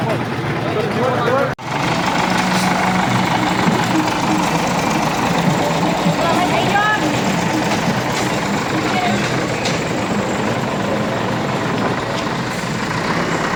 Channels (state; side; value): identical; both; correlation 1.00